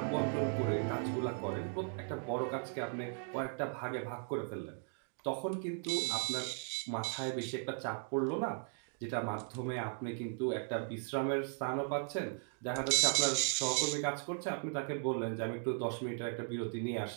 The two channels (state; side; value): silent; left; 53 dB below the other